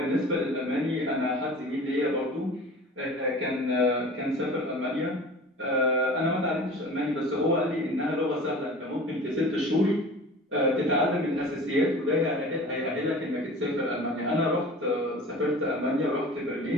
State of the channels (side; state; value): both; normal; correlation 0.40